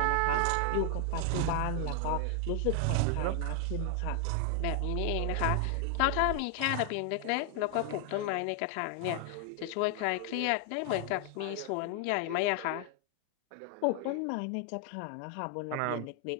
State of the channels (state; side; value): different; both; correlation 0.00